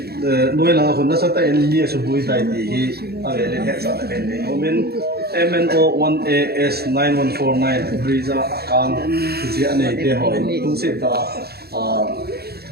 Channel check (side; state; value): left; late; 0.46 ms